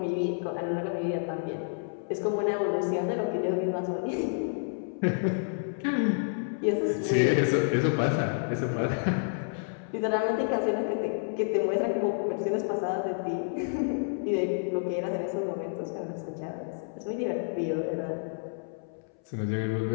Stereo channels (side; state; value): right; silent; 58 dB below the other